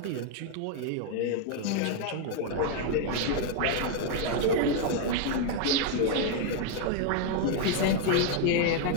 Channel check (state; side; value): different; both; correlation 0.00